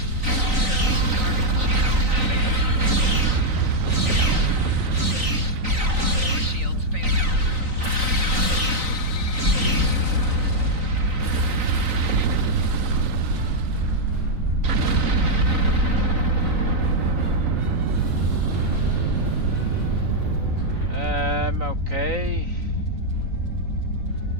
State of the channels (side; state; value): left; late; 3.9 ms